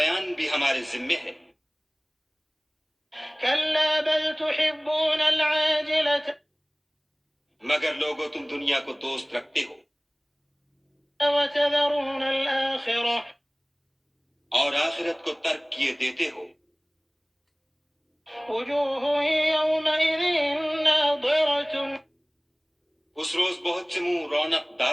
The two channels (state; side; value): identical; both; correlation 1.00